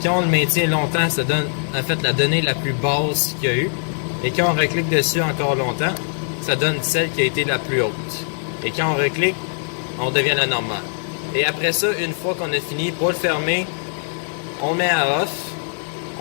Quand on le maintient longtemps, ça donne en fait la donnée la plus basse qu'il y a eu. Et quand on reclique dessus encore longtemps, ça donne celle qui a été la plus haute. Et quand on reclique, on devient la normale. Et après ça, une fois qu'on a fini, pour le fermer, on le met à off,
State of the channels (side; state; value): right; silent; digital silence